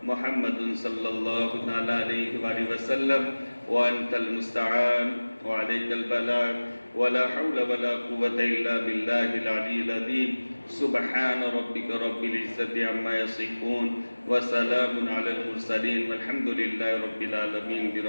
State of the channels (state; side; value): inverted; both; correlation -1.00